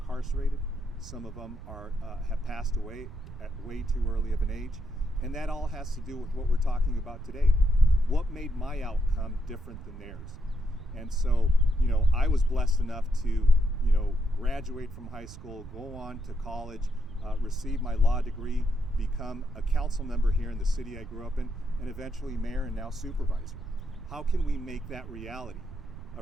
Some of them have passed away at way too early of an age. And that all has to do with what we're talking about today. What made my outcome different than theirs? And so, I was blessed enough to, graduate from high school, go on to college, receive my law degree, become a council member here in the city I grew up in, and eventually mayor and now supervisor. How can we make that reality a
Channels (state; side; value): noise; right; rumble, 13 dB below the sound